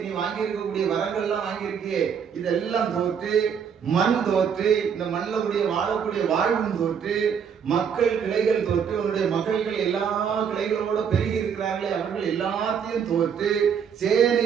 நீ வாங்கி இருக்கக்கூடிய வரங்கள் எல்லாம் வாங்கியிருக்கியே இதெல்லாம் தோற்று, மண் தோற்று, இந்த மண்ணில் கூடிய வாழக்கூடிய வாழ்வும் தோற்று, மக்கள் கிளைகள் தோற்று, உன்னுடைய மகள்கள் எல்லா கிளைகளோட பெருகி இருக்கிறார்களே அவர்கள் எல்லாத்தையும் தோற்று,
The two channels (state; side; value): quieter; left; 7.3 dB